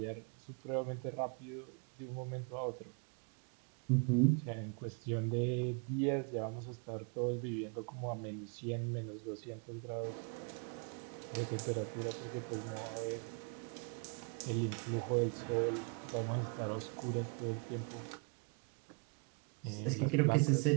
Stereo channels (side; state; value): left; quieter; 36.3 dB